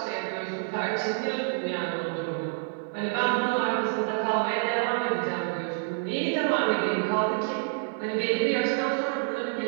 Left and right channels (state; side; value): silent; left; 57 dB below the other